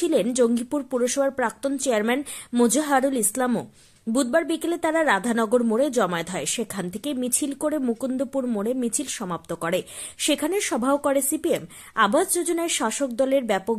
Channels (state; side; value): identical; both; correlation 1.00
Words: জঙ্গিপুর পুরসভার প্রাক্তন চেয়ারম্যান মোজাহারুল ইসলামও। বুধবার বিকেলে তারা রাধানগর মোড়ে জমায়েত হয়। সেখান থেকে মিছিল করে মুকুন্দপুর মোড়ে মিছিল সমাপ্ত করে। সেখানে সভাও করে সিপিএম। আবাস যোজনায় শাসক দলের ব্যাপক